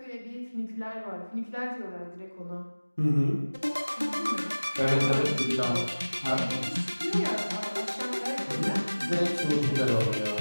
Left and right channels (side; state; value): both; inverted; correlation -1.00